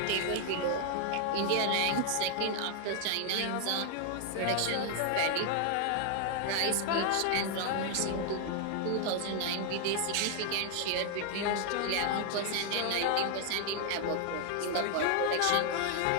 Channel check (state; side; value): different; both; correlation 0.00